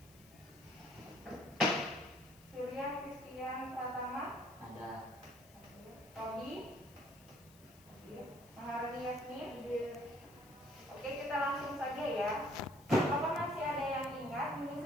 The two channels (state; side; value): noise; left; hiss, 24 dB below the sound